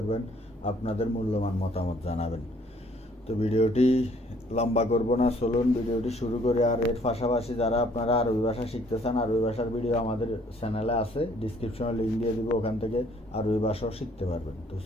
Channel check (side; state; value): both; normal; correlation 0.61